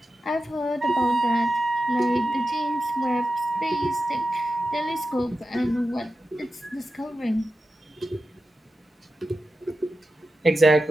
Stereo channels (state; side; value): normal; both; correlation 0.91